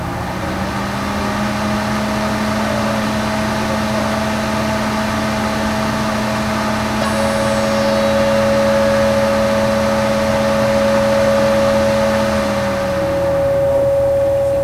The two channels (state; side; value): identical; both; correlation 1.00